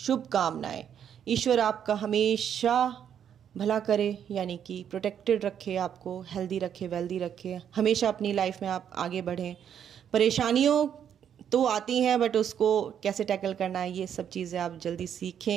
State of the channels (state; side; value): quieter; left; 8.9 dB